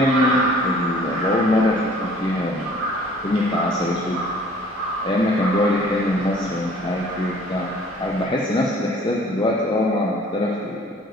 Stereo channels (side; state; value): both; normal; correlation 0.53